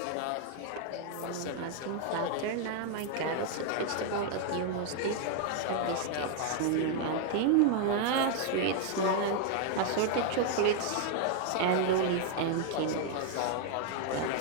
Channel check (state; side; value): different; both; correlation 0.00